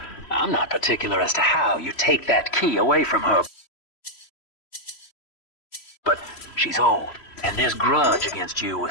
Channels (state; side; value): late; right; 3.0 ms